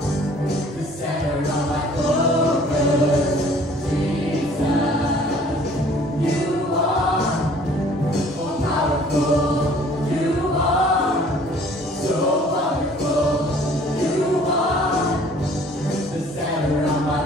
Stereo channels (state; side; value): normal; both; correlation 0.54